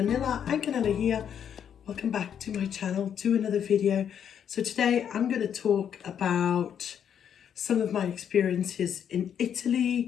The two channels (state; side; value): quieter; right; 8.6 dB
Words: Canela here. Welcome back to my channel, to another video. So today I'm going to talk about some of my experiences in